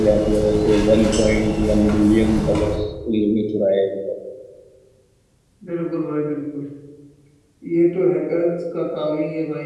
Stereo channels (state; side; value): identical; both; correlation 1.00